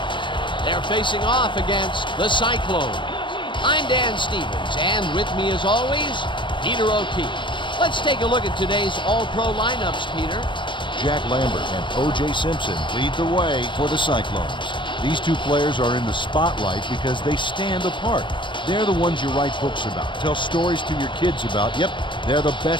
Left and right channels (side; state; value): right; late; 0.23 ms